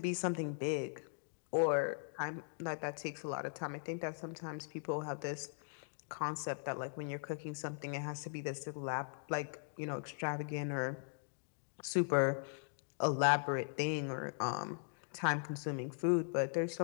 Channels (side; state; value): right; silent; digital silence